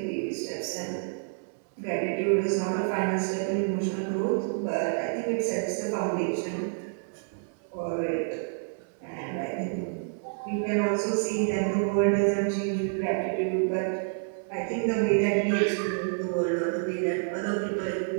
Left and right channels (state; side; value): silent; left; 59 dB below the other